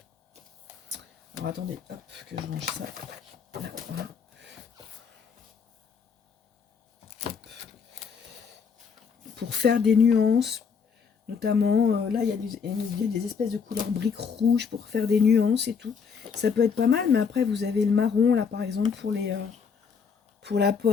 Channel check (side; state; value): right; quieter; 6.1 dB